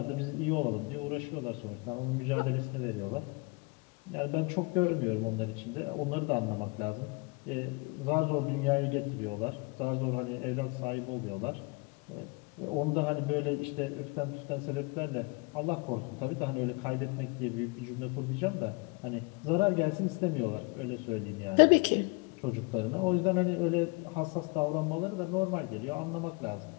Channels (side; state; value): right; quieter; 29.0 dB